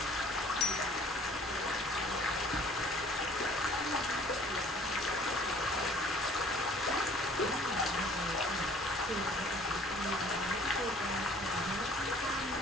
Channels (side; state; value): both; normal; correlation 0.53